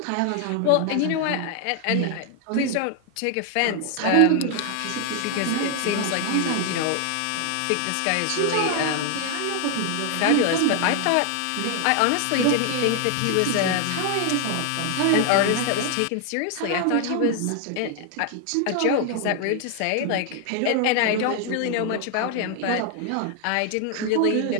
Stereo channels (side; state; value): both; different; correlation 0.00